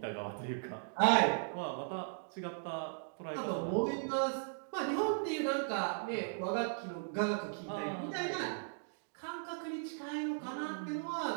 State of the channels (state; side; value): silent; left; digital silence